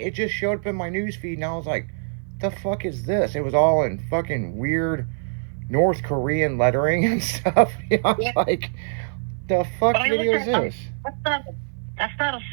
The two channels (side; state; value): left; silent; 56 dB below the other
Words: just showed up in my news feed, and I was like, the fuck is this? It was all in fucking weird North Korean lettering and stuff. I'm like, the fuck But I video is looked at- this? That's not a